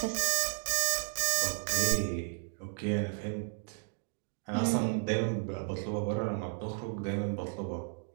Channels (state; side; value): silent; left; 55 dB below the other